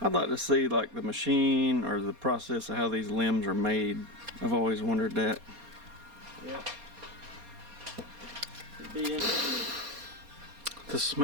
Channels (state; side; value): late; left; 4.2 ms